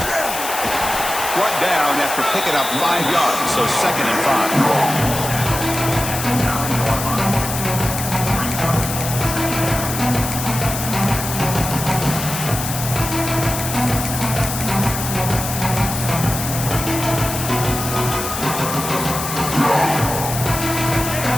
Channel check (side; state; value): left; noise; hiss, 5 dB below the sound